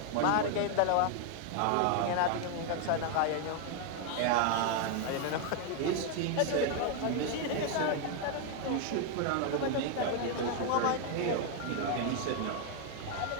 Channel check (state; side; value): different; both; correlation 0.00